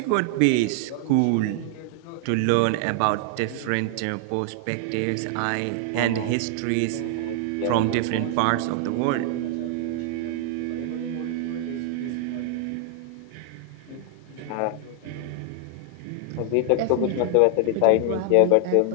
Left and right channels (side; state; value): both; different; correlation 0.00